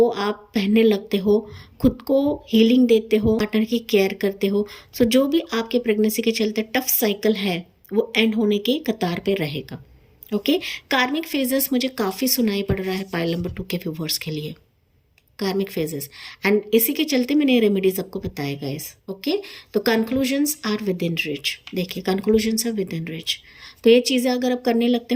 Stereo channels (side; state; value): both; identical; correlation 1.00